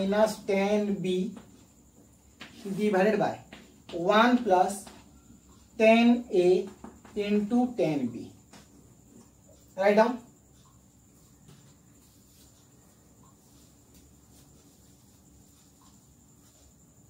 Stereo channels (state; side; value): identical; both; correlation 1.00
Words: 10 b divided by 1 plus 10 A into 10 b. Write down.